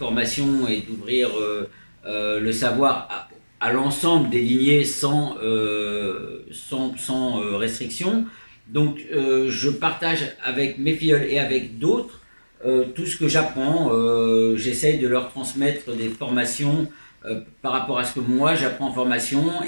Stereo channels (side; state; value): both; inverted; correlation -1.00